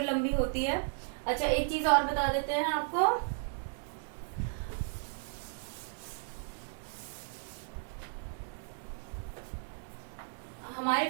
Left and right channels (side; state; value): left; silent; 55 dB below the other